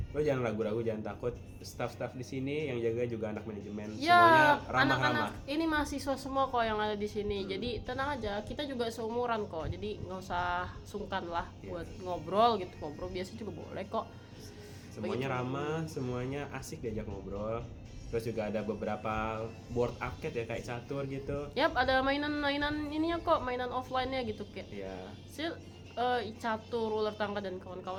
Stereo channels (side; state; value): both; identical; correlation 1.00